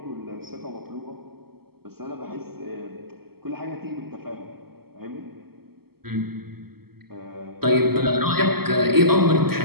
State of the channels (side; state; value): left; late; 0.95 ms